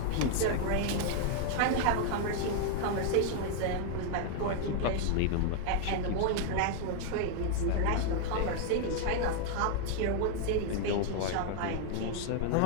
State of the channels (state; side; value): different; both; correlation 0.00